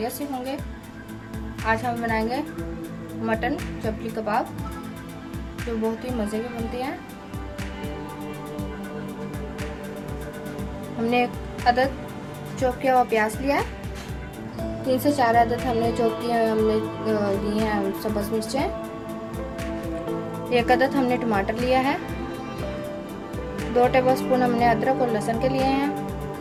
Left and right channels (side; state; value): both; identical; correlation 1.00